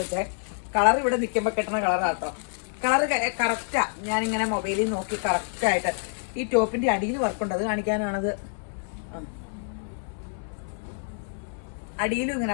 വെച്ചേ. കളർ ഇവിടെ നിൽക്കുമ്പോൾ കിട്ടുന്ന കളറാട്ടോ. Colour correct. ഞാനിങ്ങനെ മൊബൈലിൽ നോക്കി കറക്റ്റായിട്ട്. ഈ ടോപ്പിന്റെ അടിയിൽ വർക്കുണ്ട്, അത് കാണിക്കാനാണത്. അടിയിലും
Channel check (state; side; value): silent; right; 60 dB below the other